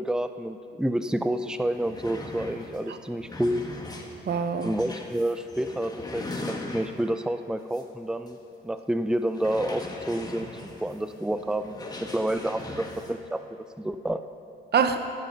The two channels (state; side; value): normal; both; correlation 0.76